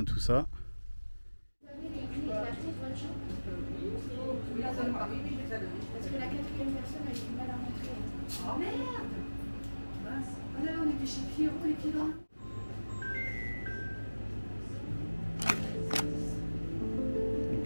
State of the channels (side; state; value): both; inverted; correlation -1.00